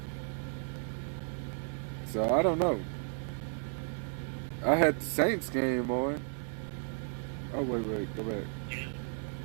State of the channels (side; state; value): left; silent; 55 dB below the other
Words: So I don't know. I had the Saints game on. Oh wait, go back. Yeah.